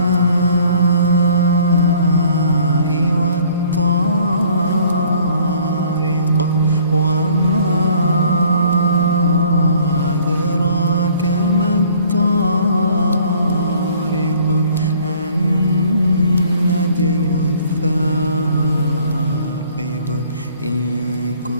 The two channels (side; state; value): both; inverted; correlation -0.56